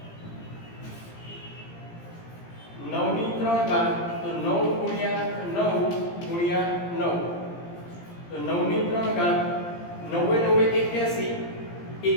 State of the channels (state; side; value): late; right; 17 ms